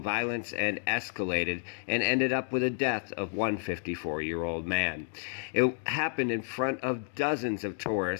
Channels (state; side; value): silent; right; 56 dB below the other